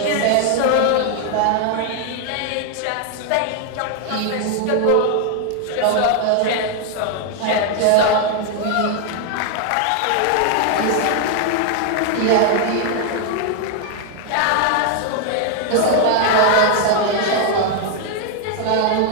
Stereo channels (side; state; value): both; different; correlation 0.00